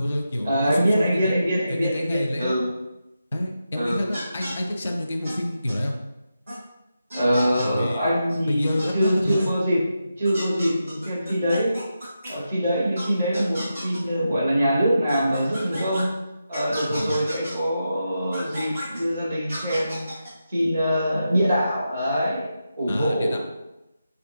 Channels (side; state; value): both; inverted; correlation -0.88